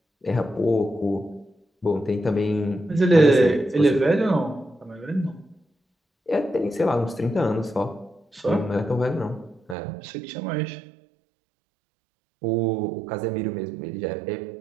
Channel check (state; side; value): drops out; left; at 9.8 s